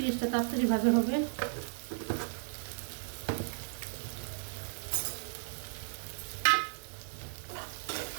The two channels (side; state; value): left; silent; digital silence